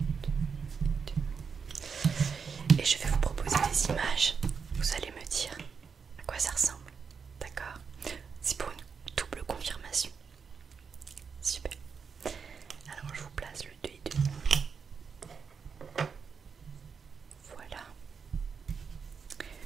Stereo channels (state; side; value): quieter; left; 5.9 dB